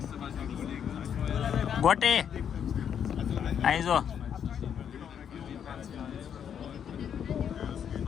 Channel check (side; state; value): right; quieter; 8.4 dB